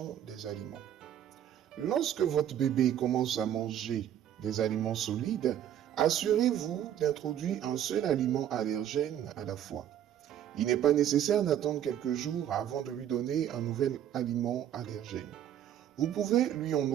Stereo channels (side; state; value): left; quieter; 10.6 dB